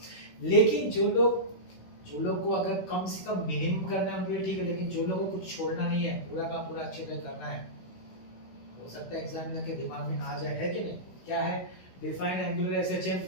लेकिन जो लोग को अगर कम से कम मिनिमम करना है उनके लिए ठीक है, लेकिन जो लोगों को कुछ छोड़ना नहीं है, पूरा का पूरा अच्छे से करना है, हो सकता है एग्जामिनर के दिमाग में आ जाए, है कि नहीं? क्या है? Define angular SHM.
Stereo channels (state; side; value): late; right; 16 ms